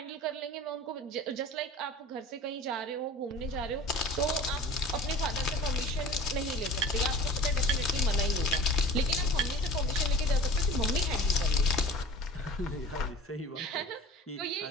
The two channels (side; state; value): both; normal; correlation 0.41